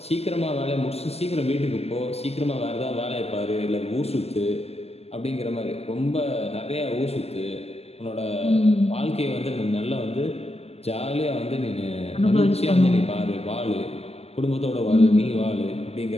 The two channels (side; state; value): right; late; 0.29 ms